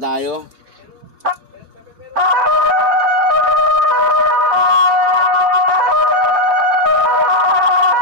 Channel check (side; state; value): both; normal; correlation 0.02